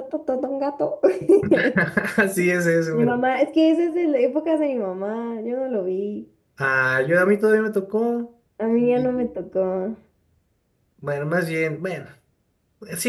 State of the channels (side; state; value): both; identical; correlation 1.00